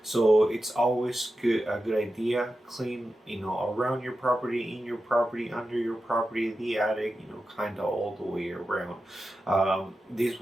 So it's always a good idea clean, around your property, in your property, under your property, the attic, kind of all the way around. This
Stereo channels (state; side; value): normal; both; correlation 0.91